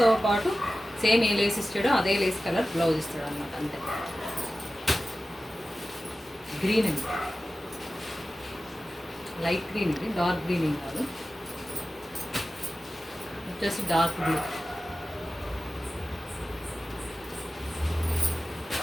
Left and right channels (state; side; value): normal; both; correlation 0.95